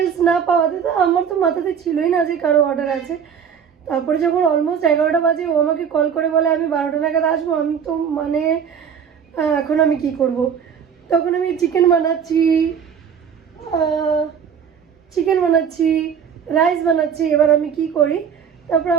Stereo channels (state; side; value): quieter; left; 7.4 dB